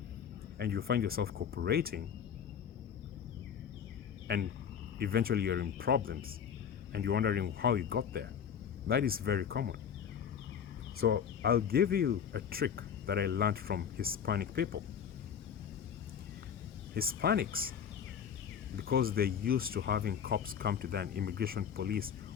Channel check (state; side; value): quieter; right; 7.9 dB